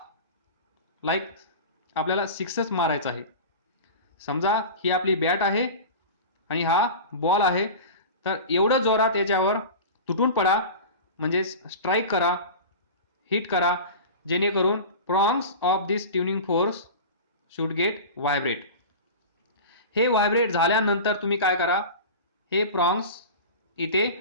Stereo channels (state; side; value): inverted; both; correlation -0.32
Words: लाईक आपल्याला सिक्सच मारायचा आहे. समजा ही आपली बॅट आहे आणि हा बॉल आहे, तर एवढं जोरात याच्यावर तुटून पडा, म्हणजे स्ट्राईक करा, हिट करा, जेणेकरून prongs of this tuning fork should get vibrate. हे व्हायब्रेट झाल्यानंतर तुम्ही काय करा, हे प्रॉंग्स इथे